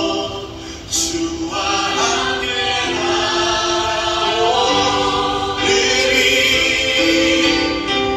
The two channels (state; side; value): identical; both; correlation 1.00